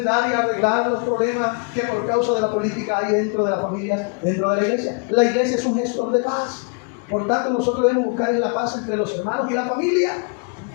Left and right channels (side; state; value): right; quieter; 36.4 dB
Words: y arreglar los problemas que por causa de la política hay dentro de las familias, dentro de la iglesia. La iglesia es un gestor de paz. Por tanto, nosotros debemos buscar la paz entre los hermanos y la familia.